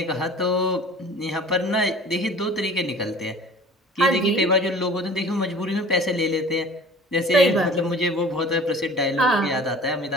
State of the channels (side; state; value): both; normal; correlation 0.45